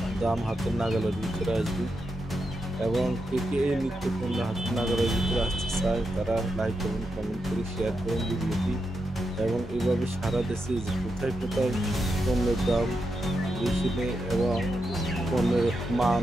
দাম হাতের নাগালের ভিতরে আসবে। এবং কে এই নিত্যপণ্য হাতের নাগালের ভিতরে আসতে চায় তারা লাইক এবং কমেন্ট করে শেয়ার করেন ভিডিওটি। এবং এইভাবে সারা দেশে কোথায় কোথায় পণ্যের দাম বেশি নেই এবং পণ্যের মান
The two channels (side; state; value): both; normal; correlation 0.86